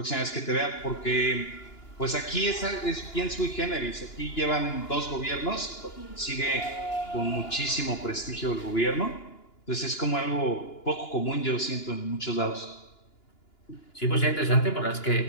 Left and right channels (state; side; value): late; right; 2.9 ms